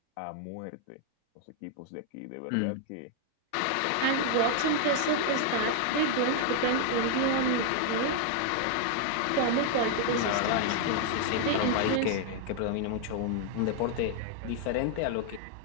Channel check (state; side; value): different; both; correlation 0.00